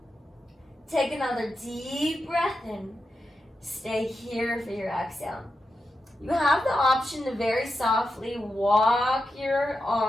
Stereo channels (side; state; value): both; normal; correlation 0.89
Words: Take another deep breath in. Stay here for your exhale. You have the option to very softly walk your